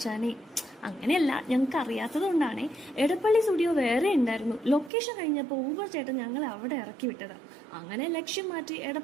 അങ്ങനെയല്ല, ഞങ്ങൾക്ക് അറിയാത്തത് കൊണ്ടാണേ. എടപ്പള്ളി സ്റ്റുഡിയോ വേറെ ഉണ്ടായിരുന്നു. ലൊക്കേഷൻ കഴിഞ്ഞപ്പോൾ ഊബർ ചേട്ടൻ ഞങ്ങളെ അവിടെ ഇറക്കി വിട്ടതാ. അങ്ങനെ ലക്ഷ്യം മാറ്റി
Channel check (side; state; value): left; drops out; at 4.9 s